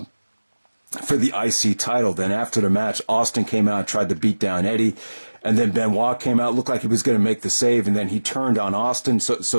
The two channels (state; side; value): inverted; both; correlation -1.00